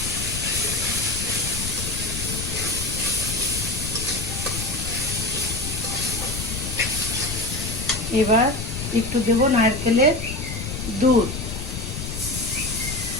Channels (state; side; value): noise; left; rumble, 6 dB below the sound